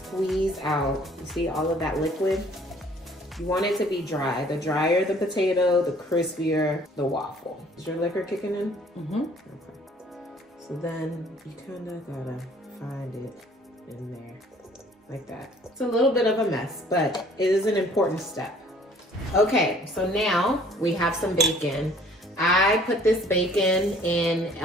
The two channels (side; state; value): both; normal; correlation 0.56